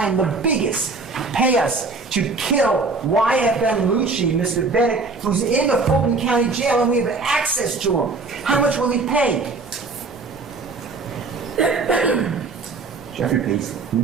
the biggest, pay us to kill YSL Lucci, Mr. Bennett, who's in the Fulton County Jail and we have access to him? How much will he pay? Jeffrey pays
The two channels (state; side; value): quieter; left; 3.9 dB